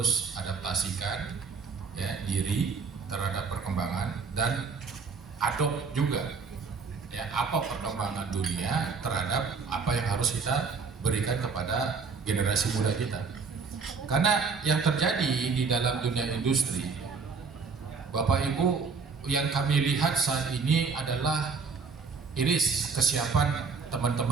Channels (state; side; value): quieter; left; 5.0 dB